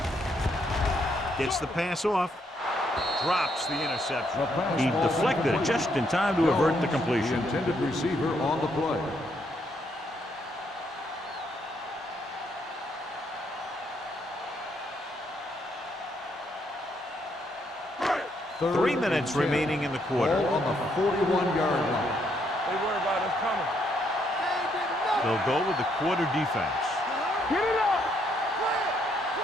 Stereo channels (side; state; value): both; normal; correlation 0.74